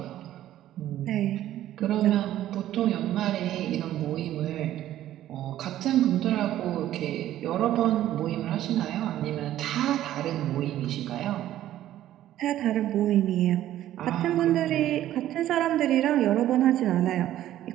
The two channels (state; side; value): quieter; left; 13.0 dB